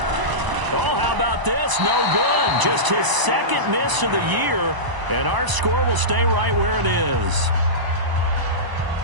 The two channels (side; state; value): left; late; 1.0 ms